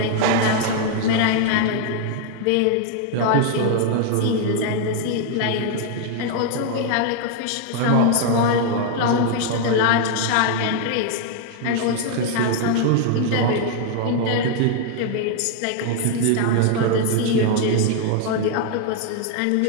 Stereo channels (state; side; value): different; both; correlation 0.00